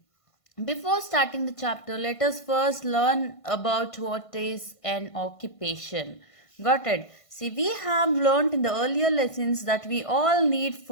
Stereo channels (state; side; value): late; right; 1.5 ms